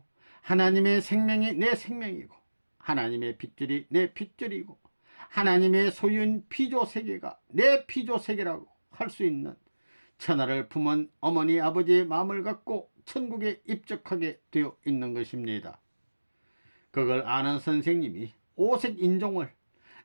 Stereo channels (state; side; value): inverted; both; correlation -1.00